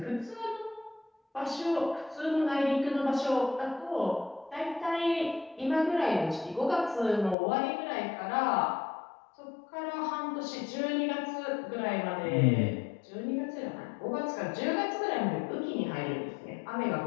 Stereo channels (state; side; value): drops out; right; at 7.4 s